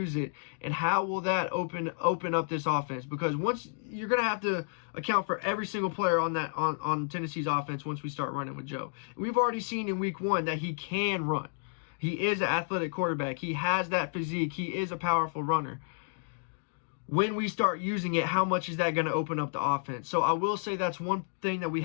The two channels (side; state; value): right; silent; digital silence